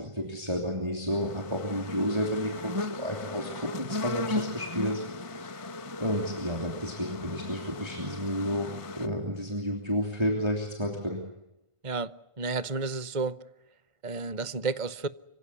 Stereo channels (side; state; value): left; late; 1.5 ms